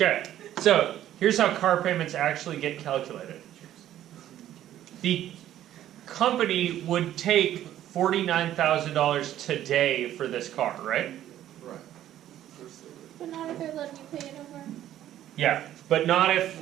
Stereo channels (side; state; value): left; quieter; 12.2 dB